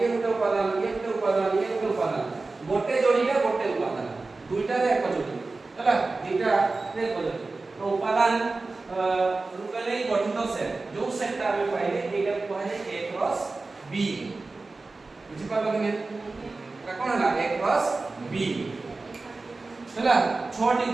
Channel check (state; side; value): quieter; left; 3.6 dB